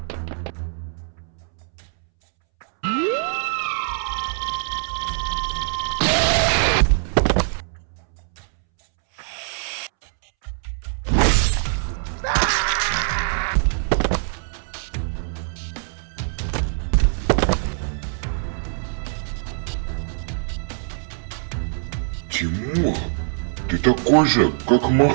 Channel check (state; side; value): silent; left; 63 dB below the other